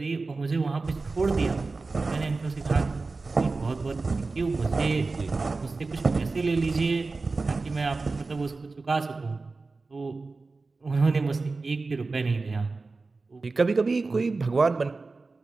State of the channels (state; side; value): quieter; left; 3.8 dB